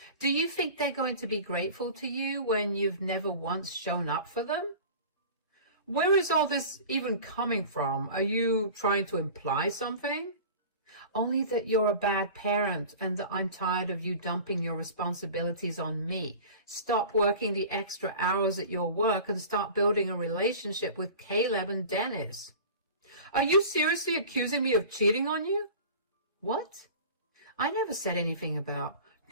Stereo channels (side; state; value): both; inverted; correlation -0.39